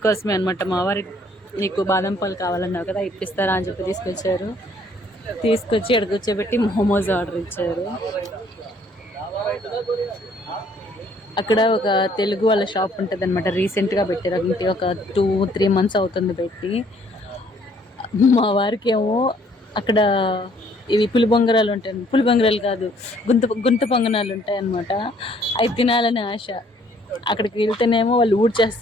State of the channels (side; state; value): both; normal; correlation 0.62